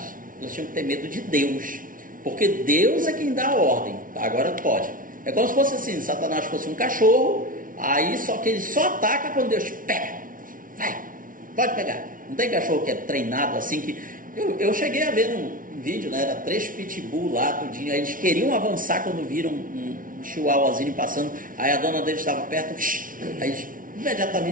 elas tinham que ter medo de Deus, porque Deus é quem dá a ordem. Agora pode. É como se fosse assim, Satanás fosse um cachorro, aí só que ele só ataca quando Deus pega. Vai, pode pegar. Não tem cachorro que é treinado assim que... Eu cheguei a ver num vídeo, né? Era 3 pitbull lá, tudinho. Aí eles queriam avançar quando viram um chihuahuazinho passando. Aí a dona deles estava perto. Aí eles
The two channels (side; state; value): left; late; 0.39 ms